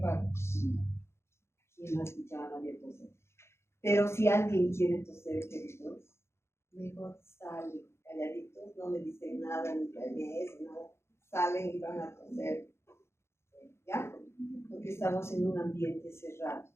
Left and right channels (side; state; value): right; late; 0.13 ms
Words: Y no escuchaba a nadie toser. Pero si alguien quiere toser, queridos, mejor salen calladitos, no me dicen nada, ni planees, nada. Salen y van a toser. ¿Ya? Porque estamos en un ambiente cerrado.